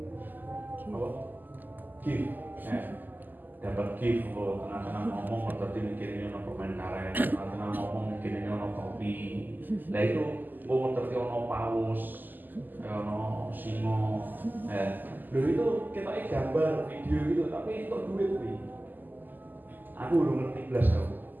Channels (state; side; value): late; left; 0.087 ms